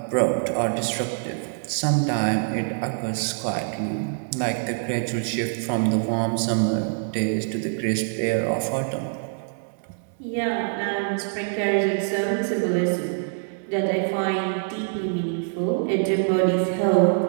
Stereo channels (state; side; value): silent; left; digital silence